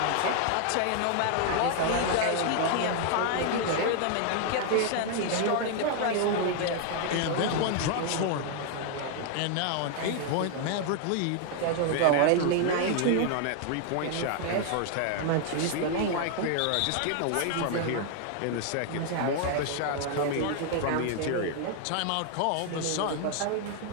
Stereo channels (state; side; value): different; both; correlation 0.00